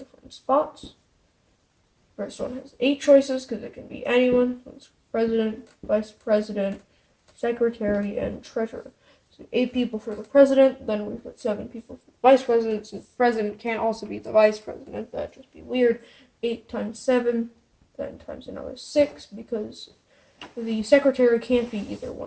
spots. First one has 8 choices because it can be anyone. It's president, vice president, secretary, and treasurer. 8 people for the president, then we've got 7 people for the vice president. Since the president can't also be the vice president, that'd just be weird. 8 times 7, then times another 6, because the secretary can't be either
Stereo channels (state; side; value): identical; both; correlation 1.00